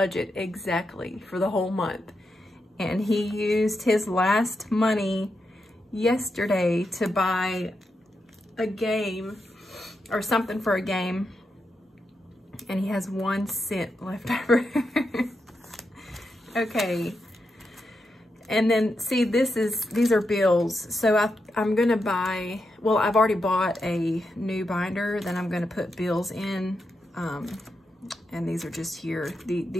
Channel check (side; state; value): both; normal; correlation 0.85